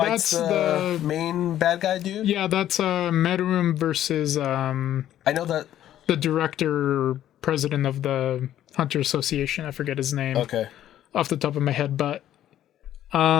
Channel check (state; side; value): quieter; right; 11.9 dB